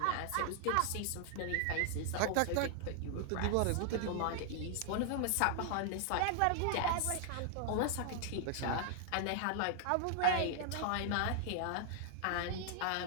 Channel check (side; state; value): both; different; correlation 0.00